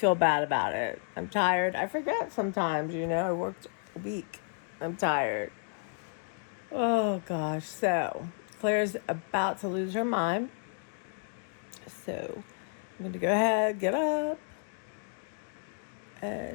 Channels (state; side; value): silent; right; 56 dB below the other